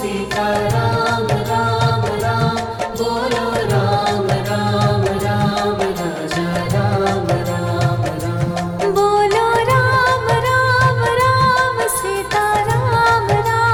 सीता राम राम राम, बोलो राम राम राम, राजा राम राम राम। बोलो राम राम राम, सीता राम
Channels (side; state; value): both; identical; correlation 1.00